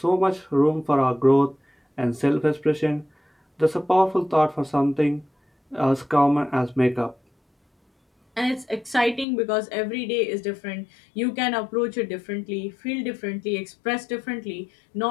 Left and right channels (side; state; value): right; drops out; at 9.2 s